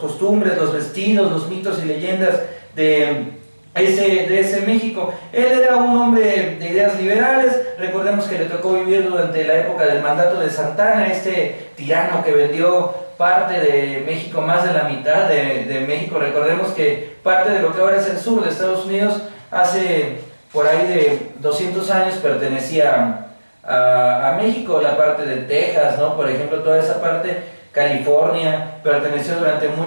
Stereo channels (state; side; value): inverted; both; correlation -1.00